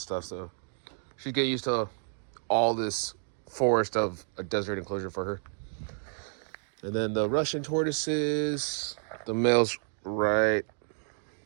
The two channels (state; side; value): silent; left; 57 dB below the other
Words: stuff, so she'd get used to all this forest of a desert enclosure for her. And then the Russian tortoises, the male's right